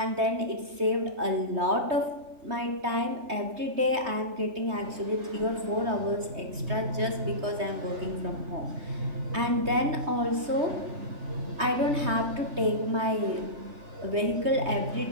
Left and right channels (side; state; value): left; late; 3.2 ms